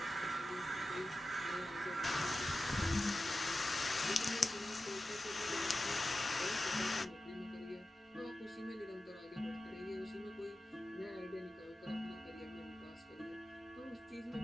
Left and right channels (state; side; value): normal; both; correlation 0.93